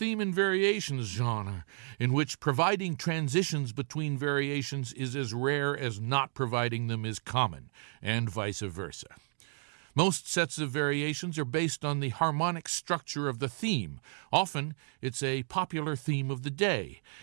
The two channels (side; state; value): left; silent; 56 dB below the other